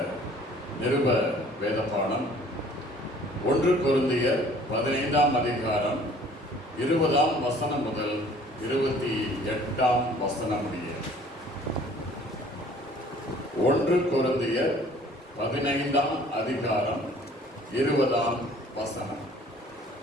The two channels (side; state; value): both; normal; correlation 0.53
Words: நிருப வேதப்பாடம் 1 கொரிந்தியர் 15ஆம் அதிகாரம் 20ஆம் வசனம் முதல் 28ஆம் வசனம் முடிய. 1 கொரிந்தியர் 15ஆம் அதிகாரம் 20ஆம் வசனம்.